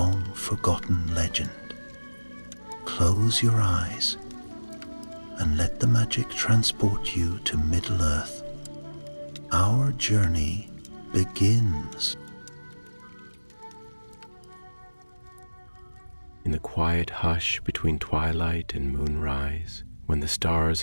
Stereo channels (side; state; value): both; inverted; correlation -1.00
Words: legend. Close your eyes and let the magic transport you to Middle-earth. Our journey begins. In the quiet hush between twilight and moonrise, when the stars